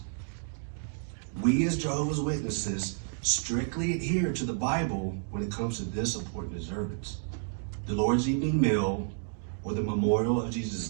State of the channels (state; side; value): silent; left; 57 dB below the other